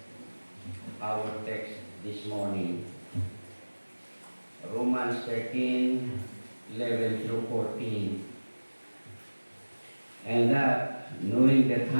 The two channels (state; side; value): inverted; both; correlation -1.00